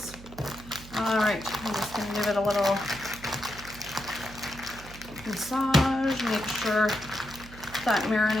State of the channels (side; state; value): right; noise; hum, 17 dB below the sound